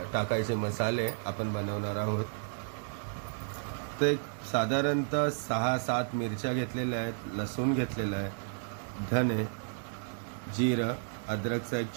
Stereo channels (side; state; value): left; silent; 56 dB below the other